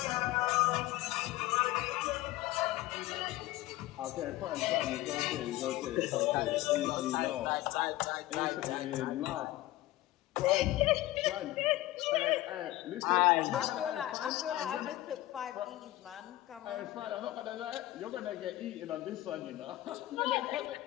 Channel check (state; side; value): quieter; right; 16.5 dB